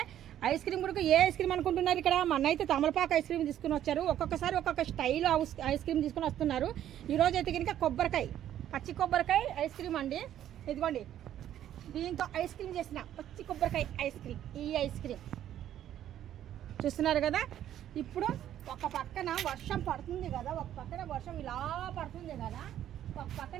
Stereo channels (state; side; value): quieter; left; 11.4 dB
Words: ఐస్ క్రీమ్ కూడా ఏ ఐస్ క్రీమ్ అనుకుంటున్నారు ఇక్కడ మన అయితే తమలపాకు ఐస్ క్రీమ్ తీసుకుని వచ్చారు. ఒక్కొక్కసారి ఒక్కొక్క స్టైల్ ఐస్ క్రీమ్ తీసుకుని వస్తున్నారు. ఈరోజు అయితే కనుక పచ్చి కొబ్బరికాయ ఐస్ క్రీమ్ అండి. ఇదిగోండి దీంతో ఐస్ క్రీమ్ చేసిన పచ్చి కొబ్బరికాయ ఐస్ క్రీమ్. ఈ ఐస్ క్రీమ్ చూస్తున్నారు కదా. ఇప్పుడు ఒక పక్కన వర్షం పడుతుంది కదా, ఒక పక్కన వర్షం ఇలా పడుతుంది కదా, ఒక